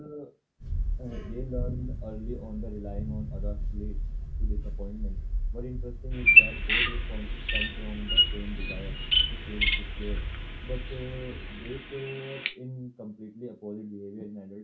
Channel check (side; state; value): both; identical; correlation 1.00